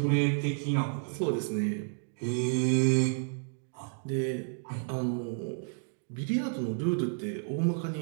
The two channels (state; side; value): silent; left; digital silence